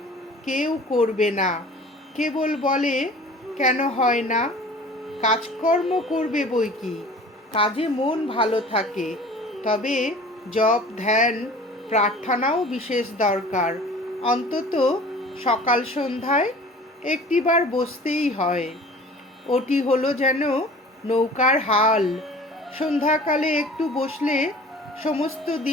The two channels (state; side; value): normal; both; correlation 0.44